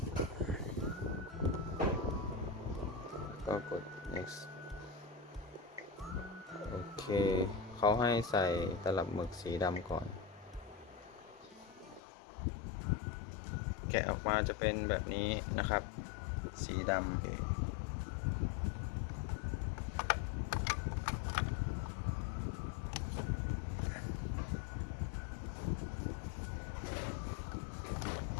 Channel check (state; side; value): drops out; right; at 12.0 s